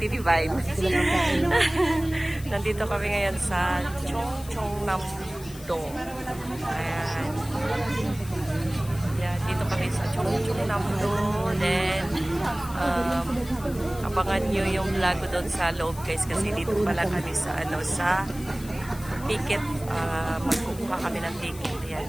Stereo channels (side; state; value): left; noise; hiss, 17 dB below the sound